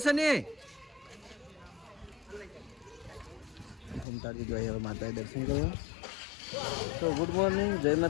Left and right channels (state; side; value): drops out; right; at 4.0 s